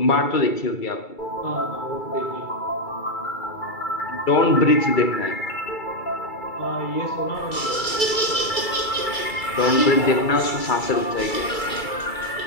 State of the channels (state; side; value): late; right; 2.3 ms